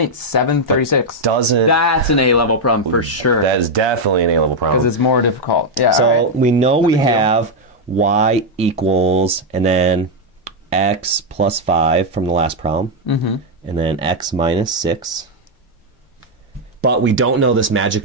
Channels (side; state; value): both; normal; correlation 0.01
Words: 736. Doesn't. That's an A-level problem for sure. That is definitely an A-level problem. Because it's more difficult. Yeah. So we know we have y equals, and then x plus 5 from the last problem, and then x minus 6. But we don't know this magic